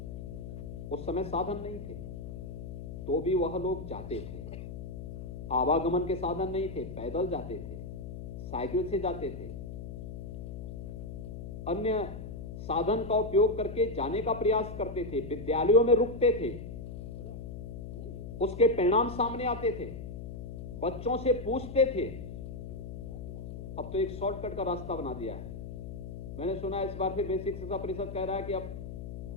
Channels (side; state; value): left; noise; hum, 8 dB below the sound